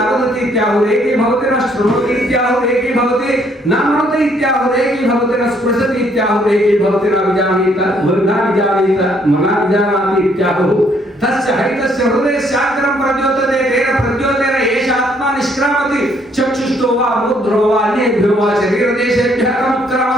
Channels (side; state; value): both; normal; correlation 0.67